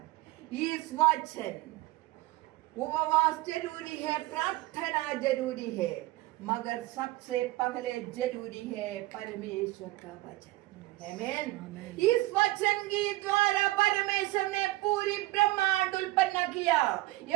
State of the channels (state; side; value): quieter; left; 19.3 dB